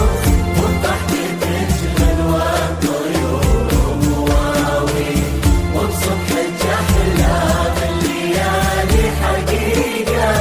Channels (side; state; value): both; identical; correlation 1.00